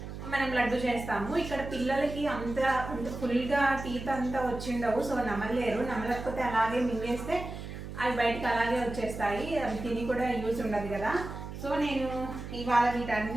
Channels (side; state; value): right; noise; hum, 9 dB below the sound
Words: మనం లడ్డు చేస్తాము. ఇక్కడ పిల్లలకి అంత ఫుల్గా టీత్ అంతా వచ్చిండవు, సో నమలలేరు. నమలకపోతే అలాగే మింగేస్తే అవి బయటకు అలాగే వచ్చేస్తాయి. అవి తిని కూడా యూజ్ ఉండదు కదా. సో నేను ఇవాళ